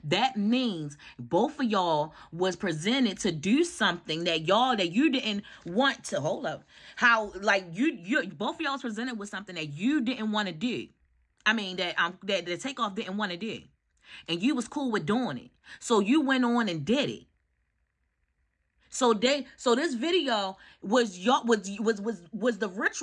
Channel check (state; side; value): identical; both; correlation 1.00